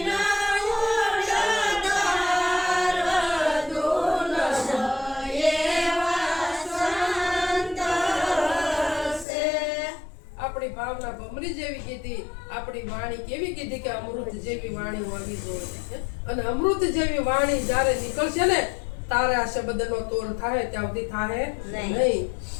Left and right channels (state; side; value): drops out; right; at 9.2 s